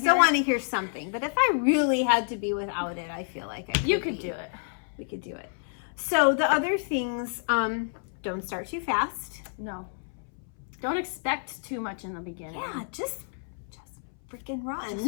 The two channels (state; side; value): silent; right; 59 dB below the other